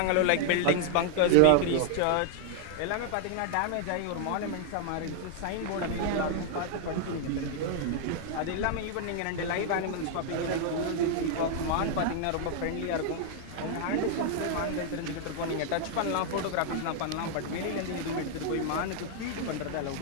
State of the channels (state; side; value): different; both; correlation 0.00